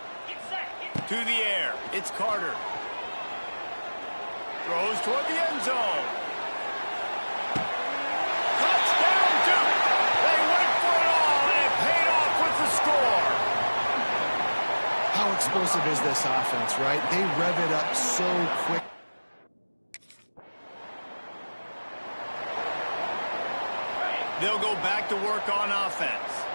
To the air, it's Carter. Throws toward the end zone. Touchdown, Duke! They went for it all, and it paid off with the score. How explosive is this offense, right? They rev it up so quick. They'll go back to work on offense.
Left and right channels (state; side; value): inverted; both; correlation -1.00